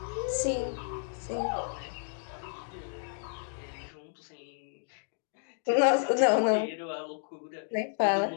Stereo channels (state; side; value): silent; right; digital silence